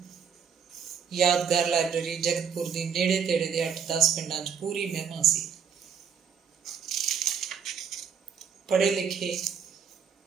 ਯਾਦਗਾਰ ਲਾਇਬ੍ਰੇਰੀ ਜਗਤਪੁਰ ਦੀ ਨੇੜੇ ਤੇੜੇ ਦੇ 8-10 ਪਿੰਡਾਂ 'ਚ ਪੂਰੀ ਮਹਿਮਾ ਸੀ। ਪੜ੍ਹੇ ਲਿਖੇ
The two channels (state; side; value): quieter; left; 7.0 dB